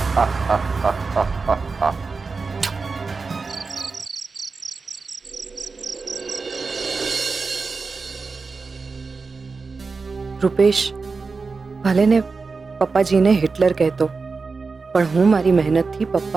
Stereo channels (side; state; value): left; quieter; 4.4 dB